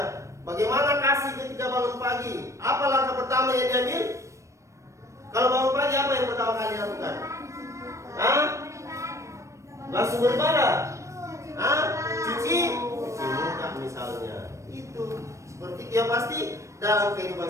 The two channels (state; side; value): late; left; 0.15 ms